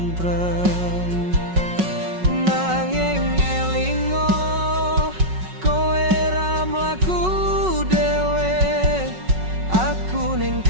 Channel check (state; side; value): late; left; 5.4 ms